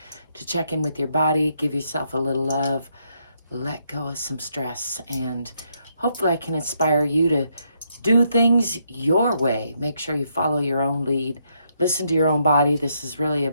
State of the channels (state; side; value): inverted; both; correlation -0.76